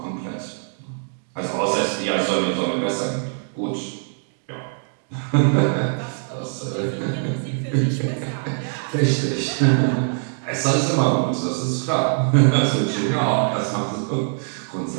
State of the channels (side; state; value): left; silent; 59 dB below the other